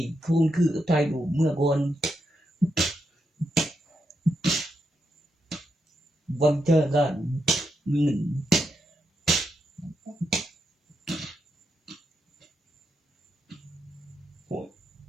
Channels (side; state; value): both; normal; correlation 0.83